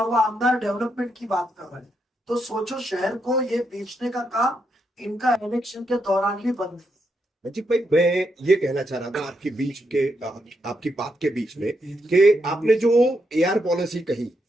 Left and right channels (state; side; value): normal; both; correlation 0.81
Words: वो आमदार डेवलपमेंट की बात कर रहे हैं। तो सोचो शहर को ये बेचने का काम इनका इलेक्शन के दौरान भी बंद है। नजीब भाई, मैं ये कहना चाह रहा था आपकी बात के बीच में कि आपने जो एआर पॉलिसी कही